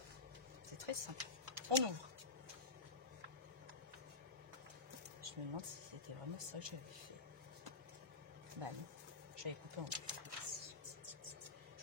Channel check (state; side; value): quieter; right; 3.9 dB